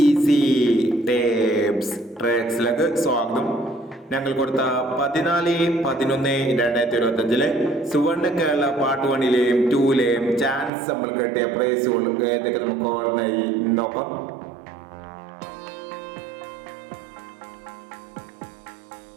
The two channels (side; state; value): left; drops out; at 10.7 s